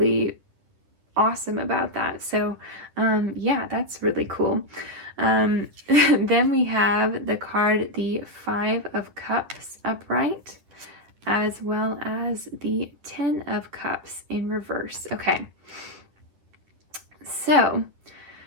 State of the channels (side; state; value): left; late; 10 ms